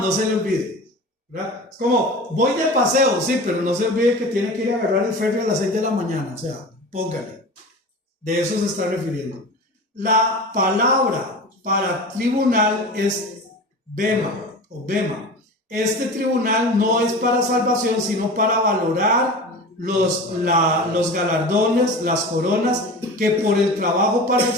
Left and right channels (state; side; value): normal; both; correlation 0.33